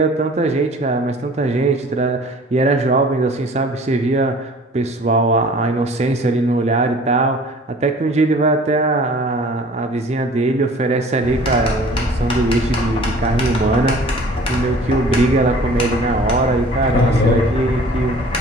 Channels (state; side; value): normal; both; correlation 0.48